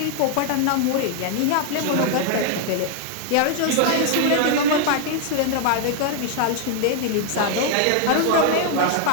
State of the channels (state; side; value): different; both; correlation 0.00